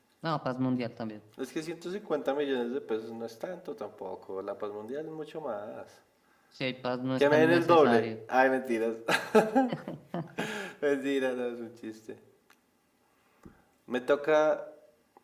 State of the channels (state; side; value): identical; both; correlation 1.00